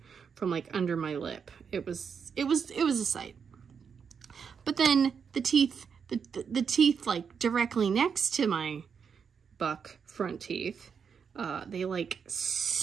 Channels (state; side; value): quieter; left; 6.5 dB